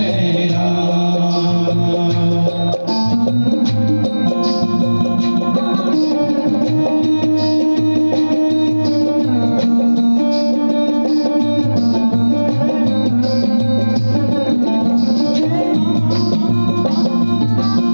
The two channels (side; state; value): both; inverted; correlation -1.00